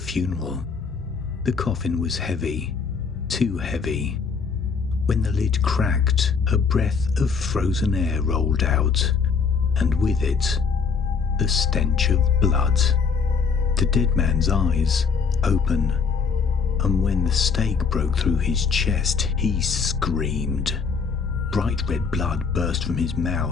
funeral. The coffin was heavy, too heavy. When the lid cracked, a breath of frozen air rolled out, and with it, the stench of blood. The dead man's eyes open, and when the stake broke through his chest, he screamed. Bright red blood burst from his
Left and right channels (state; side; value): quieter; right; 5.5 dB